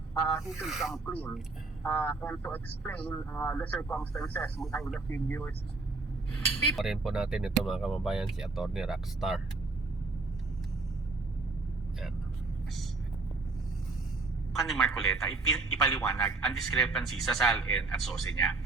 He should come clean and to explain the circumstances behind the figures. Pa rin po natin ito mga kababayan, si Attorney Rockstar. Yan. Ni Marcoleta ipaliwanag ang discrepancy sa SALN at SOSE niya.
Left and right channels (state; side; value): quieter; left; 3.7 dB